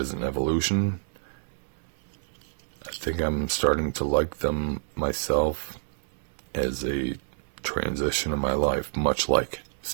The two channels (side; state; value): left; silent; digital silence